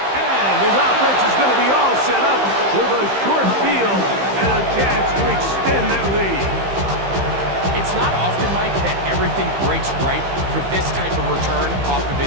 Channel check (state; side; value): late; left; 15 ms